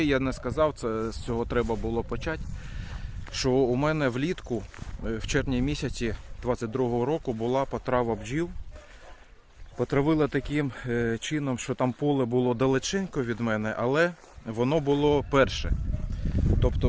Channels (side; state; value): both; identical; correlation 1.00